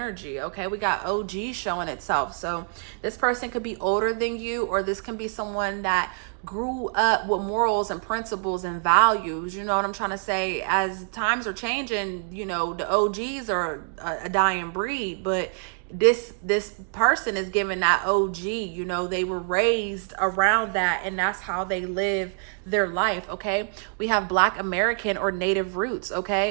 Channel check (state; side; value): silent; left; 61 dB below the other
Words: okay? We got OG showing itself. So this person could be older than you, or this can be someone that grew up with morals and principles and values, you know what I'm trying to say? As times are changing, you know, the OGs are a dying breed, but this person is given that OG, you know, they were raised around that, and that's how they live their life, okay? We have Black American or Native roots,